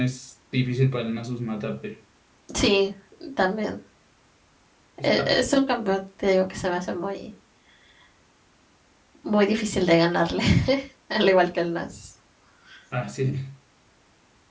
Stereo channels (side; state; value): both; identical; correlation 1.00